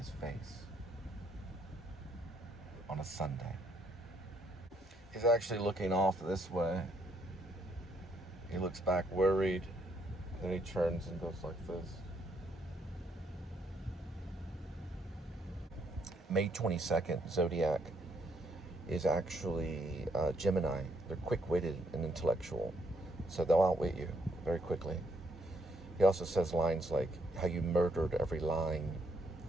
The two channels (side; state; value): both; normal; correlation 0.73